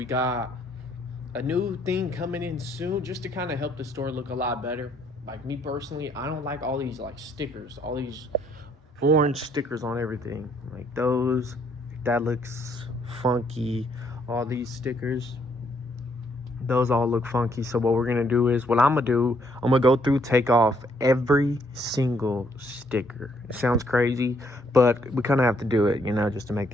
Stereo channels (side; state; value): both; normal; correlation 0.69